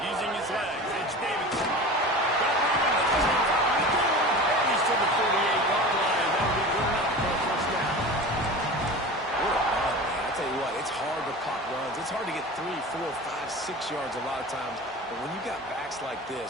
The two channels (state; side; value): normal; both; correlation 0.34